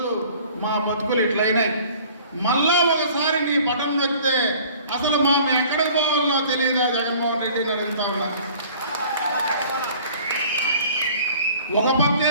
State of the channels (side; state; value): both; inverted; correlation -0.50